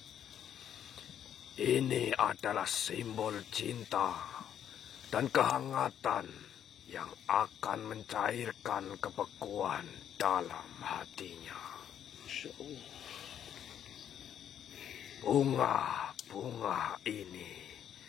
Ini adalah simbol cinta dan kehangatan yang akan mencairkan kebekuan dalam hatinya. Bunga-bunga ini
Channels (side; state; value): right; quieter; 9.6 dB